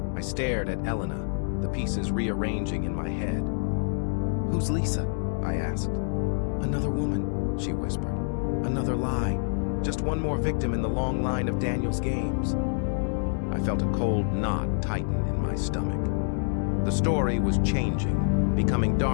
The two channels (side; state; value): right; silent; digital silence